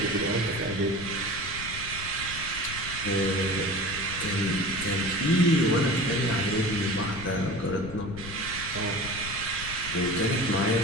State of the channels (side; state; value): left; noise; rumble, 12 dB below the sound